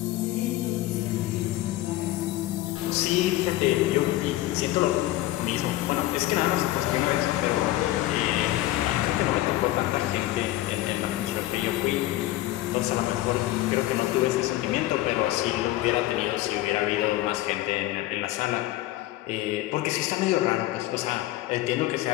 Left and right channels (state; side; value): quieter; right; 16.2 dB